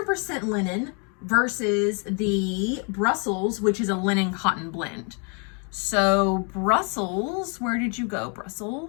linen versus the Brussels, which is a linen cotton blend. So Brussels, where did you go,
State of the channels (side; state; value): right; quieter; 37.0 dB